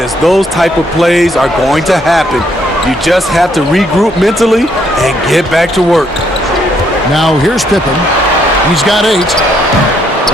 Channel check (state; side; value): normal; both; correlation 0.71